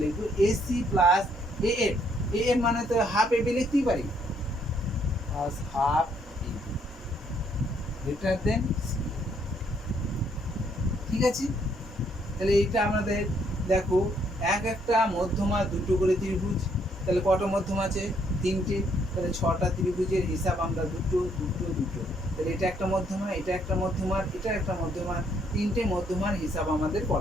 লিখবো এসি প্লাস এএফ, এএফ মানে তো হাফ এবি লিখতেই পারি, হাফ এবি গ্রেটার দেন। ঠিক আছে, তাহলে এইটা আমাদের দেখো একটা মধ্যমা দুটো করে ত্রিভুজ, তাহলে কটা মধ্যমা আছে, তিনটে, তাহলে 6টা ত্রিভুজের হিসাব আমরা দুটো দুটো দুটো, তাহলে এটা একটা মধ্যমা, এটা একটা মধ্যমার, এটা একটা মধ্যমা, তিনটে মধ্যমার হিসাব আমাদের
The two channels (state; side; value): normal; both; correlation 0.70